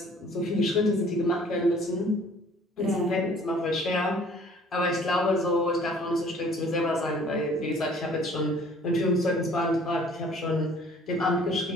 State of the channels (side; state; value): both; normal; correlation 0.54